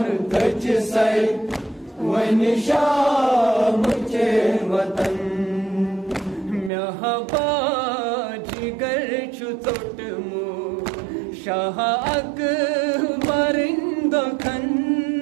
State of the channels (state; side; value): drops out; left; at 6.7 s